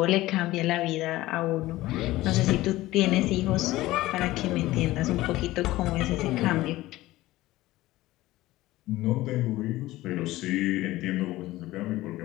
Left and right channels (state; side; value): quieter; right; 17.4 dB